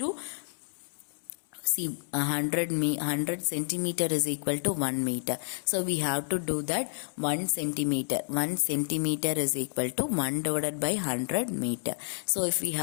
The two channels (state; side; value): silent; right; 56 dB below the other